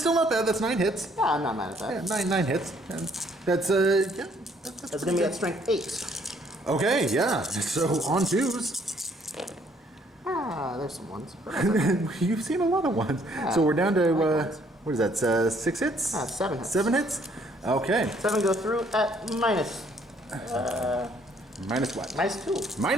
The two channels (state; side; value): normal; both; correlation 0.65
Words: not bad. That's 9 hits. Yeah, I'm not mad at that. Yeah, nine hits. And that's That's going to be at strength 8. Okay, yeah. So on 2s. There's some ones. You've seen a lot of ones. So we're down to what is that? 6 hits? 7 hits. 7 hits. Okay. 7 go through at minus. Minus what? Minus 2.